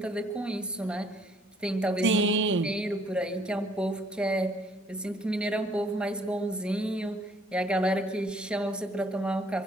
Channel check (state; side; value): normal; both; correlation 0.62